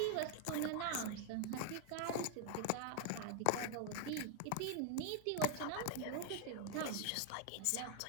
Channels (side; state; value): both; different; correlation 0.00